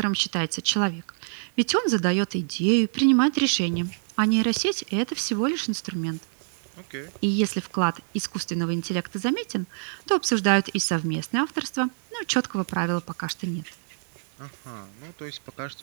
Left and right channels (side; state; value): left; silent; digital silence